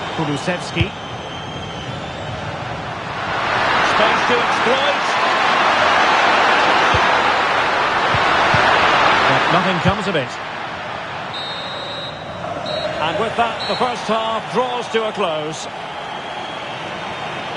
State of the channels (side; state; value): both; identical; correlation 1.00